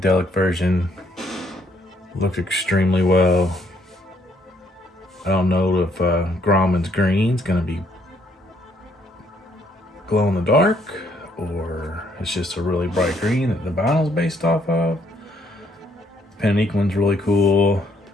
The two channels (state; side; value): normal; both; correlation 0.69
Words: version looks extremely well. I don't know if Groman's green is going to be glow in the dark, or it's just a really bright green that the vinyl's based off of. Panique one's really cool.